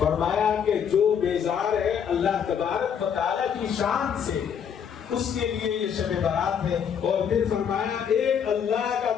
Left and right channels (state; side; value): quieter; right; 7.8 dB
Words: کہ جو بیزار ہے اللہ تبارک و تعالیٰ کی شان سے، اس کے لیے یہ شب برات ہے۔ اور پھر فرمایا ایک اللہ کا